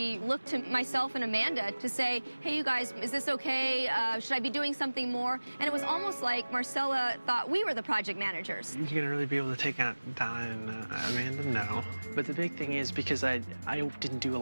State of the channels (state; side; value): inverted; both; correlation -1.00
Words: looked to myself and Amanda to say, hey, you guys, is this okay? Should I be doing something more? And it was almost like Marcella thought we were the project managers. You're gonna really be able to take out Donna and Amanda? No. But the big thing is, because I didn't do